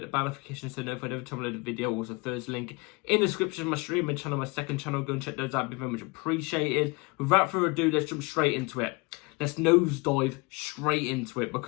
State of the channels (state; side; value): quieter; right; 27.4 dB